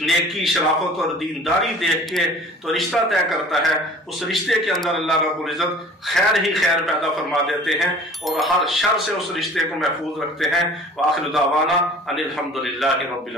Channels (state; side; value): normal; both; correlation 0.46